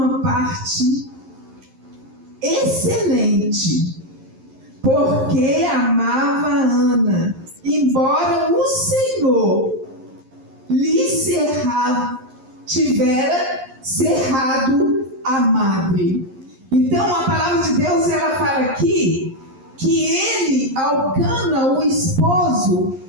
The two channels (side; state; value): left; late; 11 ms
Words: parte excelente, porque amava Ana, embora o Senhor lhe tivera cerrado a madre. Então a palavra de Deus, ela fala aqui que ele, Elcana, o esposo,